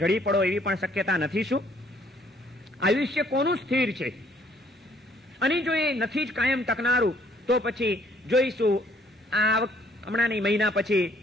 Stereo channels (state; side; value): normal; both; correlation 0.63